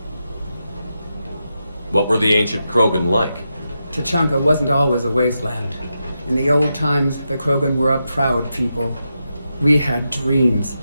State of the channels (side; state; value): both; inverted; correlation -0.87